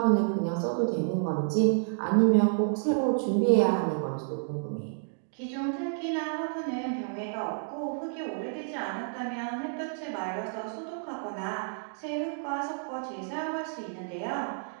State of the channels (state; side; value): silent; left; digital silence